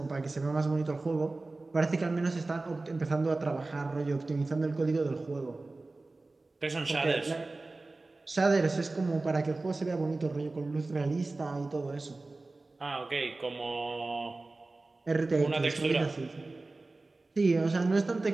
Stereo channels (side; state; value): left; quieter; 3.3 dB